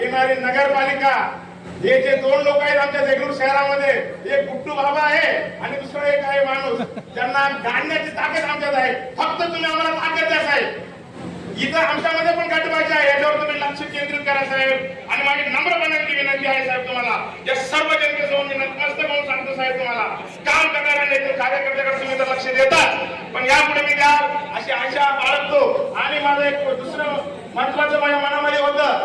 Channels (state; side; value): identical; both; correlation 1.00